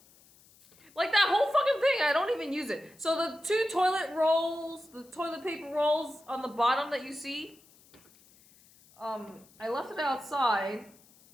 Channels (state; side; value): noise; left; hiss, 28 dB below the sound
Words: Like that whole fucking thing, I don't even use it. So the two toilet rolls, the toilet paper rolls on the bottom that you see, I left it outside,